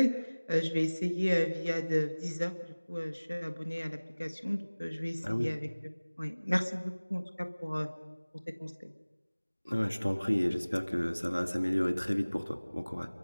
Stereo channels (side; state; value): both; inverted; correlation -1.00